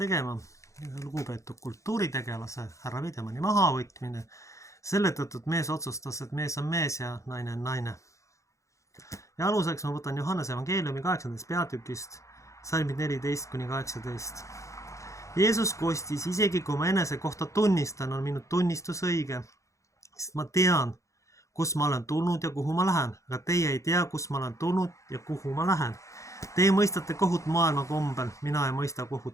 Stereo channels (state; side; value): late; right; 0.15 ms